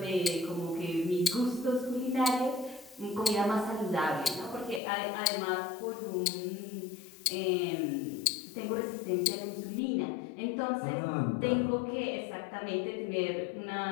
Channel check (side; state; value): right; drops out; at 4.8 s